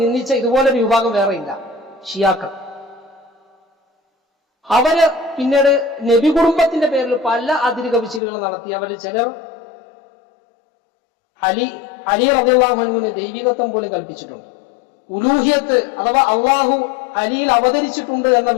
നിന്ദിച്ച ഇതുപോലൊരു വിഭാഗം വേറെയില്ല, ഷിയാക്കൾ. അവര് പിന്നീട് നബി കുടുംബത്തിന്റെ പേരിൽ പല അതിര് കവിച്ചിലുകൾ നടത്തി. അവരിൽ ചിലർ അലി റളിയല്ലാഹു അൻഹുവിന് ദൈവികത്വം പോലും കൽപ്പിച്ചിട്ടുണ്ട്. ഉലൂഹിയത്ത് അഥവാ അള്ളാഹു അലിയിൽ അവതരിച്ചിട്ടുണ്ട് എന്ന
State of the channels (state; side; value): drops out; right; at 8.2 s